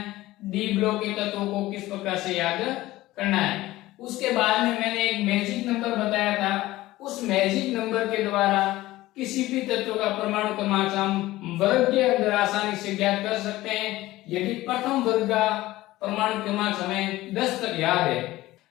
डी ब्लॉक के तत्वों को किस प्रकार से याद करना है। उसके बाद में मैंने एक मैजिक नंबर बताया था। उस मैजिक नंबर के द्वारा किसी भी तत्व का परमाणु क्रमांक हम वर्ग के अंदर आसानी से ज्ञात कर सकते हैं, यदि प्रथम वर्ग का परमाणु क्रमांक हमें 10 तक याद है।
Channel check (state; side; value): quieter; right; 17.2 dB